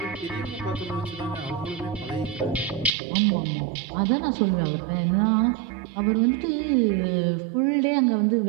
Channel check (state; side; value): drops out; left; at 2.9 s